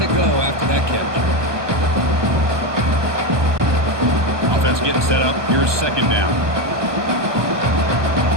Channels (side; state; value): left; late; 1.2 ms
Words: go after that catch. Offense getting set up. Here's second down.